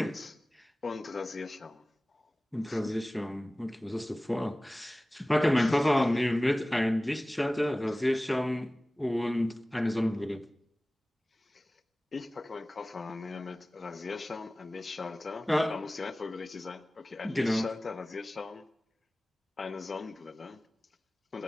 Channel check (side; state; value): both; normal; correlation 0.98